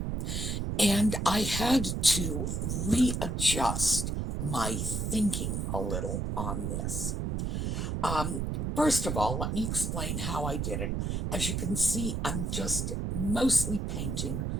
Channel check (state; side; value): noise; right; rumble, 1 dB below the sound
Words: and I had to readjust my thinking a little on this. First of all, let me explain how I did it. As you can see, I'm just mostly painting